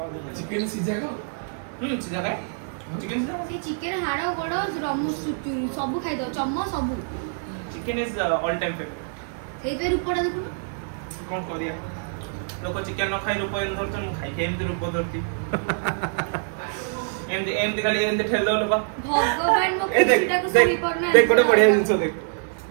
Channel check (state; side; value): silent; left; digital silence